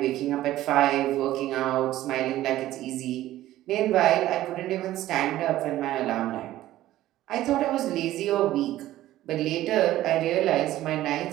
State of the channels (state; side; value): quieter; left; 14.6 dB